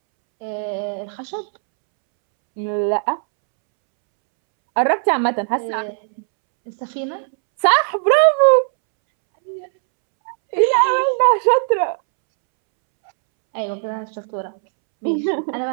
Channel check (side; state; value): left; silent; 67 dB below the other